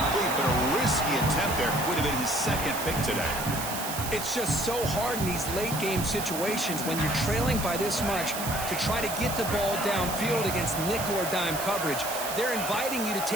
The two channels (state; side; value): noise; right; hiss, 6 dB below the sound